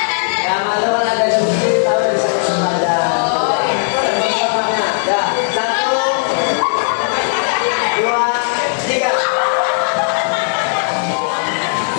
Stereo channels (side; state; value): right; silent; digital silence